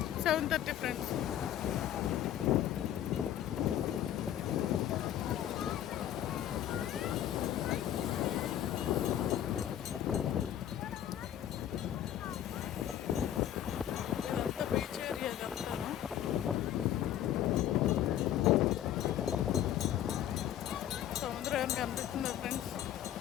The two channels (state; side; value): quieter; right; 11.2 dB